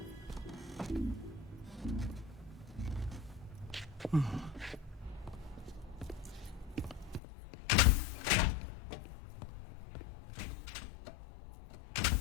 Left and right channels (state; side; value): drops out; right; at 7.2 s